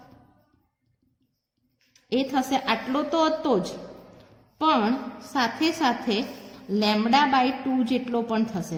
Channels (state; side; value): identical; both; correlation 1.00